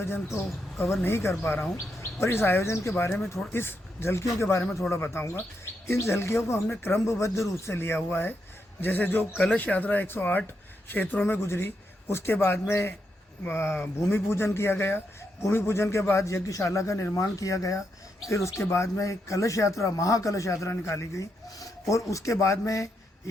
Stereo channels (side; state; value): both; normal; correlation 0.82